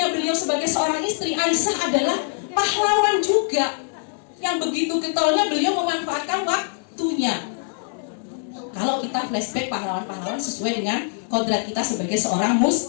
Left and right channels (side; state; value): right; silent; digital silence